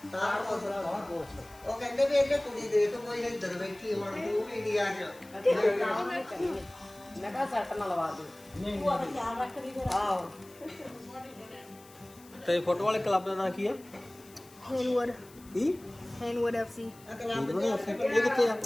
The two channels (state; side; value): noise; left; hiss, 23 dB below the sound